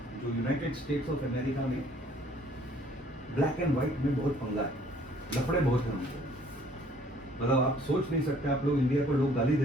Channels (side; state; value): both; normal; correlation 0.59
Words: यूनाइटेड स्टेट्स ऑफ अमेरिका में ब्लैक एंड व्हाइट में बहुत पंगा है, लफड़े बहुत हैं उनको, मतलब आप सोच नहीं सकते, आप लोग इंडिया को लोग गाली